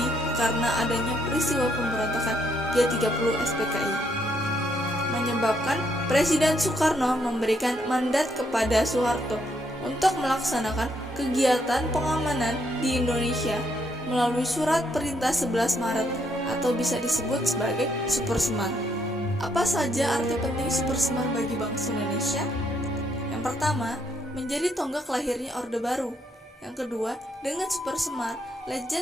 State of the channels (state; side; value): normal; both; correlation 0.73